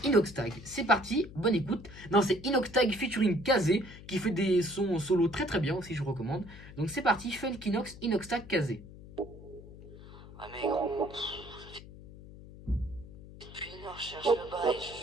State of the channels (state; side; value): noise; left; hum, 17 dB below the sound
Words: Inoxtag. C'est parti, bonne écoute. Non, c'est Inoxtag featuring Kazé, qui fait des sons solo très très bien aussi, je vous recommande. Donc, c'est parti, Funkinox, Inoxtag, Kazé. Ah, mais gros. Depuis une heure, je cherche le bail,